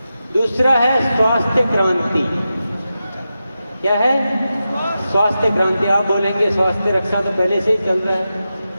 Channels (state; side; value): inverted; both; correlation -0.91